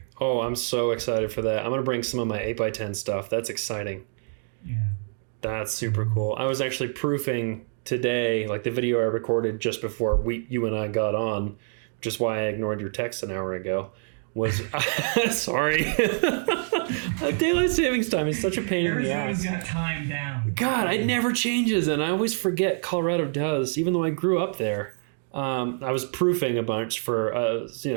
Oh, I'm so excited for that. I'm going to bring some of my 8x10 stuff. That's exciting. Yeah. That's super cool. I was actually proofing today, like the video I recorded just before you and I got on, which is why I ignored your text an hour ago, was... Sorry. Daylight savings time is such a pain in the ass. Arizona's got time down. God, it never changes, and I always forget Colorado does, even though I grew up there. I was proofing a bunch for,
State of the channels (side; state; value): left; silent; 60 dB below the other